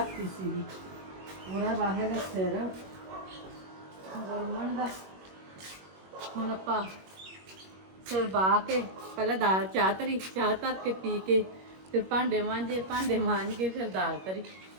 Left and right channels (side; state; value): left; late; 21 ms